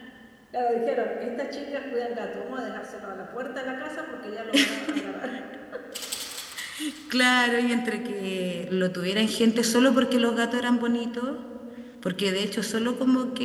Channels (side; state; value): both; identical; correlation 1.00